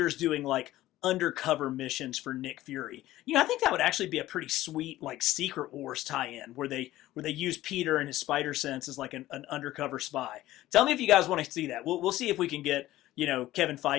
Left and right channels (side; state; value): right; quieter; 15.5 dB